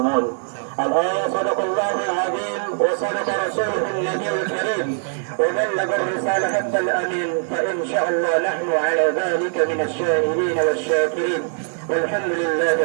الآية صدق الله العظيم وصدق رسوله النبي الكريم وبلغ الرسالة حتى الأمين، فإن شاء الله نحن على ذلك من الشاهدين والشاكرين والحمد لله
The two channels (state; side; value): silent; left; 65 dB below the other